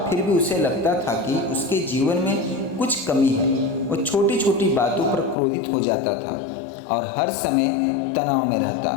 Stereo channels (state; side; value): drops out; right; at 5.4 s